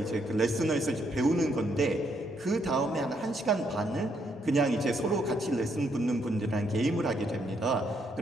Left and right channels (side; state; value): both; normal; correlation 0.74